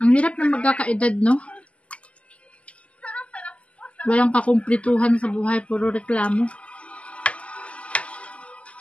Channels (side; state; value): right; late; 0.061 ms